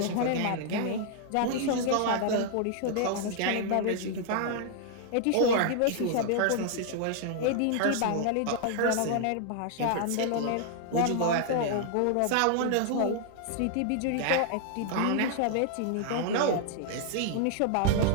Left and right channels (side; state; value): both; different; correlation 0.00